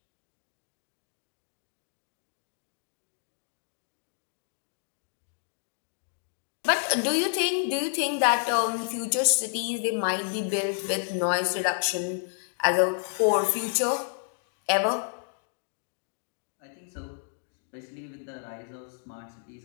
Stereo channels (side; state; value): right; silent; digital silence